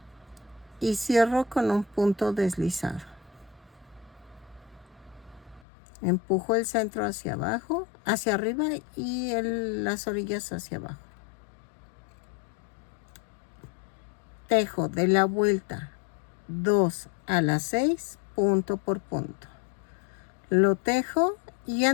Y cierro con un punto deslizado. Empujo el centro hacia abajo, hacia arriba y las orillas hacia abajo. Tejo de la vuelta 2 a la 6, punto por punto. Lo tejo y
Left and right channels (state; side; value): drops out; right; at 5.6 s